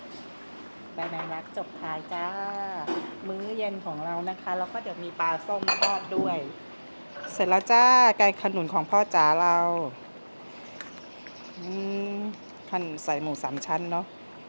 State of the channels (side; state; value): both; inverted; correlation -1.00